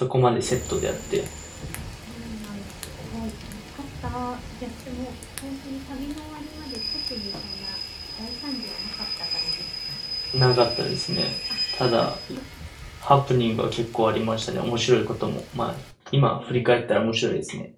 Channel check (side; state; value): both; identical; correlation 1.00